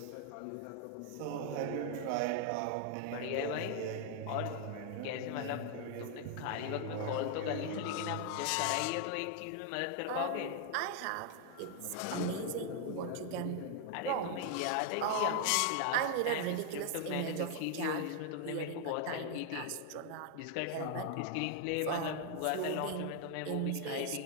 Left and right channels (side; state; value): both; different; correlation 0.00